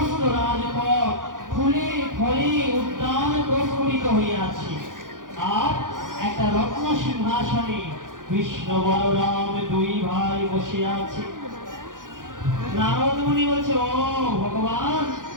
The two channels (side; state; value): left; late; 0.89 ms